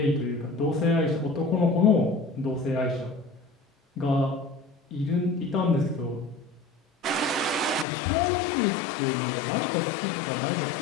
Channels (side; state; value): right; drops out; at 7.9 s